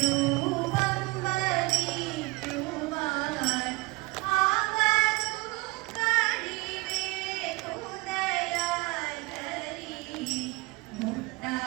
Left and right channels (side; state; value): left; quieter; 24.6 dB